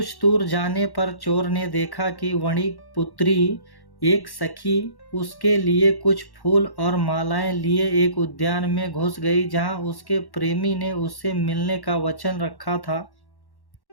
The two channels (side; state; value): right; late; 1.1 ms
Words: दूर जाने पर चोर ने देखा कि वणिक पुत्री एक सखी उसके लिए कुछ फूल और मालाएं लिए एक उद्यान में घुस गई, जहां उसके प्रेमी ने उससे मिलने का वचन रखा था।